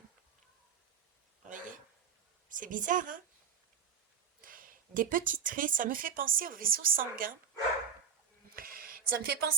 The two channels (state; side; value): quieter; left; 7.3 dB